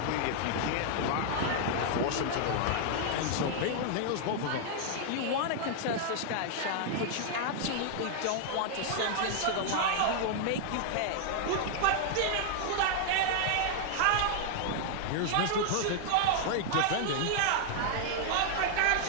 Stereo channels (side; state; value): both; different; correlation 0.00